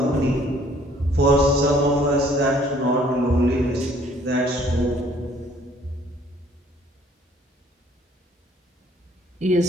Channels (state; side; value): normal; both; correlation 0.59